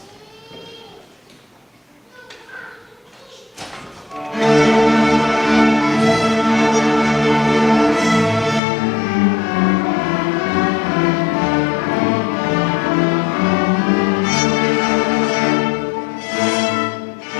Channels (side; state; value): right; drops out; at 8.6 s